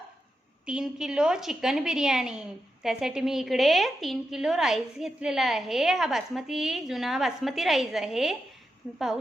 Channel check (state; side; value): normal; both; correlation 0.87